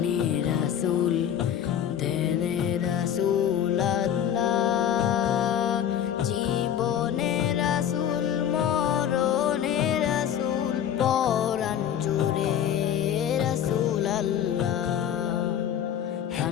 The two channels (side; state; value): right; quieter; 9.7 dB